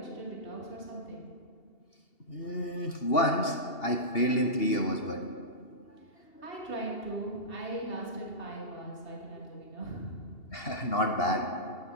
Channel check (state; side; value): late; right; 2.8 ms